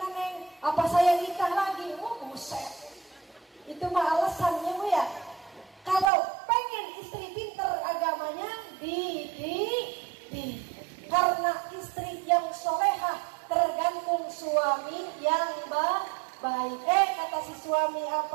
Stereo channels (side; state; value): left; drops out; at 6.1 s